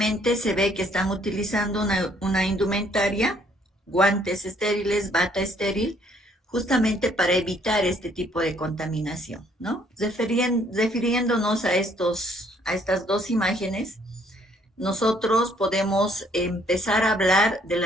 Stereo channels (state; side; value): normal; both; correlation 0.64